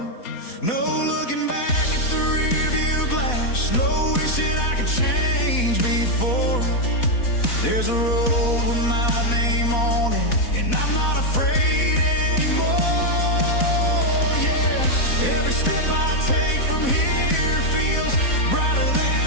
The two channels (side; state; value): right; late; 4.1 ms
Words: No looking back at the rearview glass, no wishing I could change before. There's a road with my name on it, and I'm not afraid anymore. Yeah, every step I take from here feels brighter